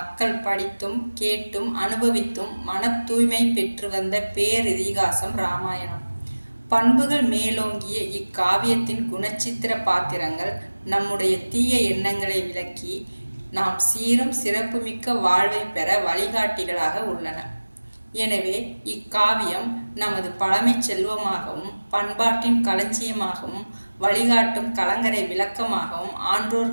படித்தும் கேட்டும் அனுபவித்தும் மன தூய்மை பெற்று வந்த பேரிதிகாசம் இராமாயணம். பண்புகள் மேலோங்கிய இக்காவியத்தின் குணச்சித்திர பாத்திரங்கள் நம்முடைய தீய எண்ணங்களை விலக்கி நாம் சீரும் சிறப்புமிக்க வாழ்வை பெற வழிகாட்டிகளாக உள்ளன. எனவே இக்காவியம் நமது பழமை செல்வமாகவும் பண்பாட்டின் களஞ்சியமாகவும் வழிகாட்டும் கலங்கரை விளக்கமாகவும்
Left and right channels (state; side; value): inverted; both; correlation -1.00